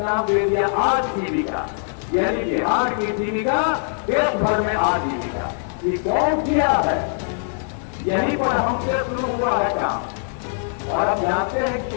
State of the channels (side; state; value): right; silent; digital silence